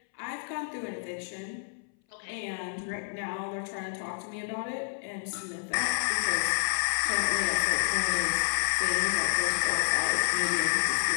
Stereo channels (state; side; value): silent; right; 58 dB below the other